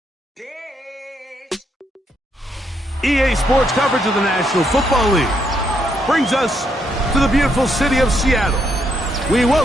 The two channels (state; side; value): normal; both; correlation 0.75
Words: EA Sports coverage of the National Football League brings us to the beautiful city of Seattle. We